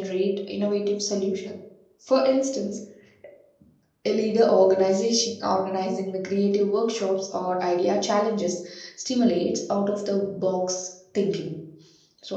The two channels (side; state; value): both; identical; correlation 1.00